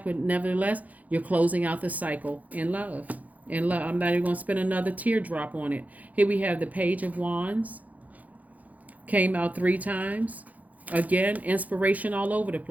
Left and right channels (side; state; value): left; late; 0.077 ms